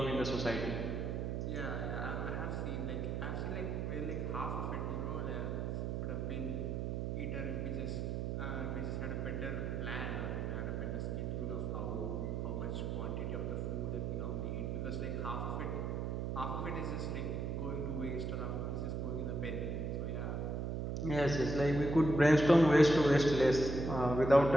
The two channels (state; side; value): noise; right; hum, 1 dB below the sound